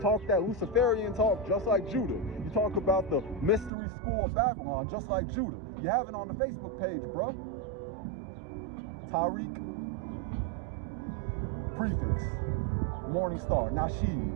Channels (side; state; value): left; drops out; at 3.7 s